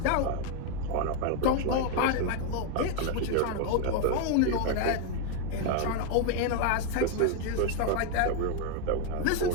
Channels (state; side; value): different; both; correlation 0.01